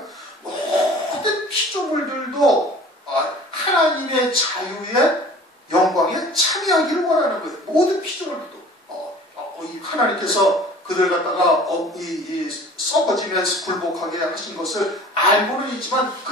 모든 피조물들도 하나님의 자유의 영광에 참여하기를 원하는 거예요. 모든 피조물들도 하나님께서 그들 갖다가 썩어지면서 굴복하게 하신 것을 알고는 있지만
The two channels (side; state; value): both; normal; correlation 0.46